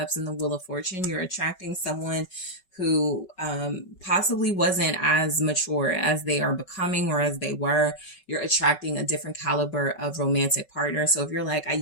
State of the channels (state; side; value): late; right; 5.3 ms